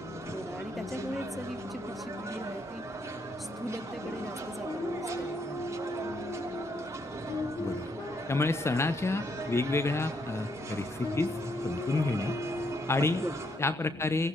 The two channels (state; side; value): normal; both; correlation 0.74